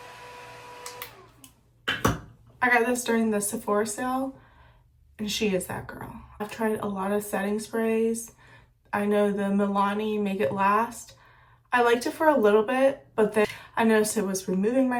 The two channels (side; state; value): both; identical; correlation 1.00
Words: I got this during the Sephora sale, and she is that girl. I've tried a lot of setting sprays. I know the Milani Make It Last. I liked it for a little bit, but then I noticed it was removing